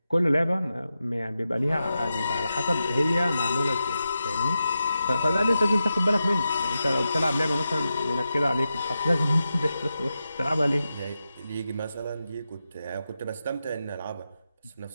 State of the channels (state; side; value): inverted; both; correlation -0.90